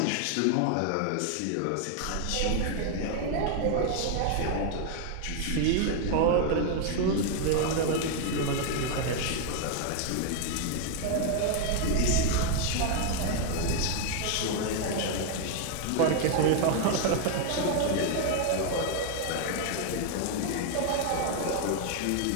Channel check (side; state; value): both; different; correlation 0.00